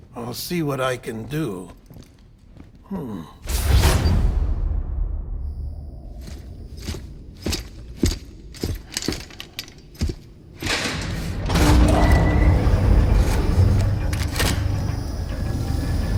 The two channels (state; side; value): identical; both; correlation 1.00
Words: I'll see what I can do.